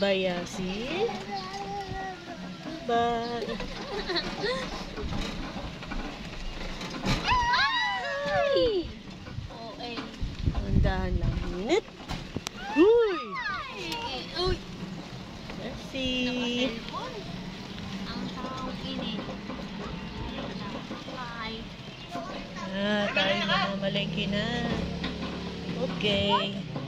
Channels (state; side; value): identical; both; correlation 1.00